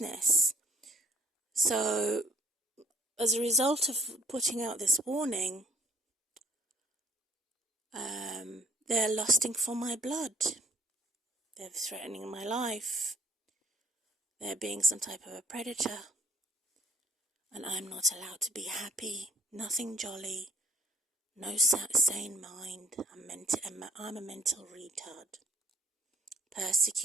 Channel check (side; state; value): both; normal; correlation 0.60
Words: So, as a result of putting out this warning, they're lusting for my blood. They're threatening my life. They're being some type of a predator. and I'm not allowed to be happy, nothing jolly, no sane mind. I'm a mental retard,